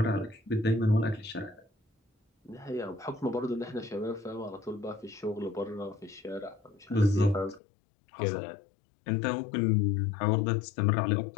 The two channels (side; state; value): right; drops out; at 7.6 s